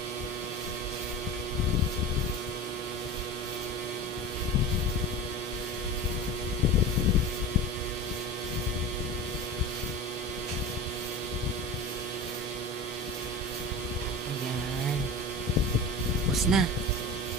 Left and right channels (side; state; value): both; normal; correlation 0.32